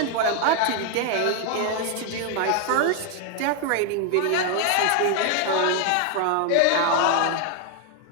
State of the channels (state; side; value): different; both; correlation 0.01